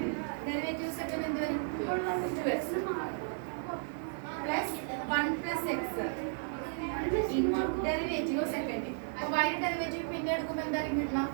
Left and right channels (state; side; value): silent; left; 55 dB below the other